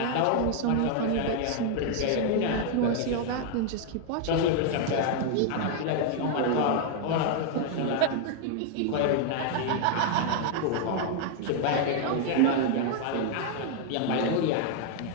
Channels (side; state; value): both; different; correlation 0.00